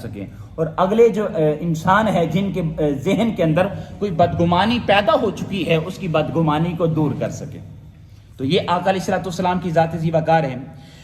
اور اگلے جو انسان ہے جن کے ذہن کے اندر کوئی بدگمانی پیدا ہو چکی ہے اس کی بدگمانی کو دور کر سکیں۔ تو یہ آقا علیہ الصلوۃ والسلام کی ذات ذی وقار ہے۔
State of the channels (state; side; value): identical; both; correlation 1.00